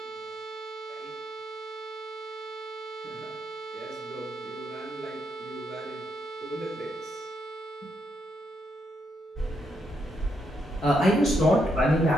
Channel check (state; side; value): normal; both; correlation 0.79